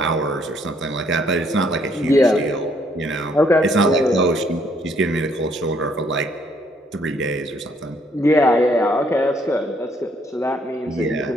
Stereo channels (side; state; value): both; normal; correlation 0.68